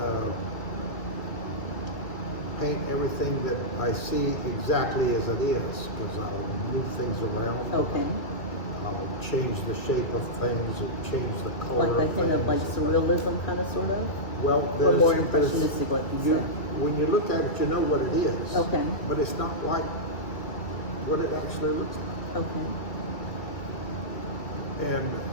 paint everything that I see exactly as it is, because I'll move things around. Okay. I'll change the shape of things and change the color Like that kind of like things. surrealism kind of sort of? Well, Or more there's, impressionistic, like you said. when you look at it, you know what it is. Okay. But it's not like what it actually looks like. Okay. And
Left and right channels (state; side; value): late; right; 2.2 ms